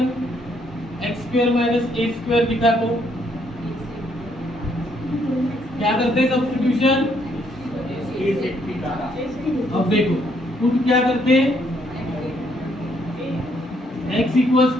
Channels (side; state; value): both; normal; correlation 0.71